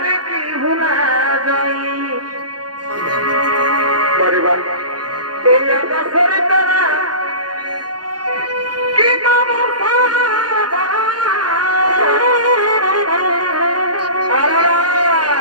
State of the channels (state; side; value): late; left; 0.69 ms